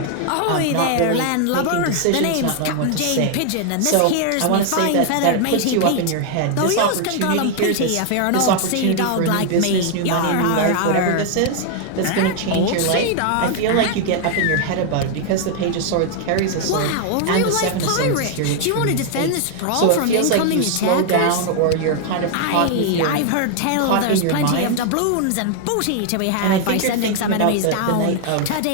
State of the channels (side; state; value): both; different; correlation 0.00